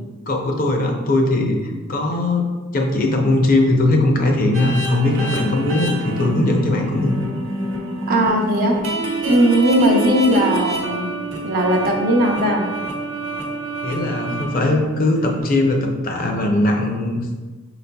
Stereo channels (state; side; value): normal; both; correlation 0.54